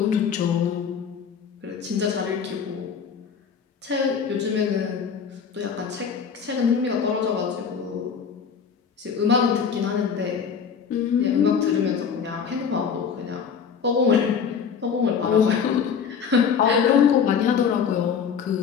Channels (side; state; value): right; quieter; 6.7 dB